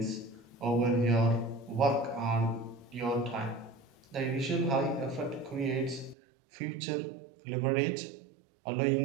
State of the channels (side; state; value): left; drops out; at 6.2 s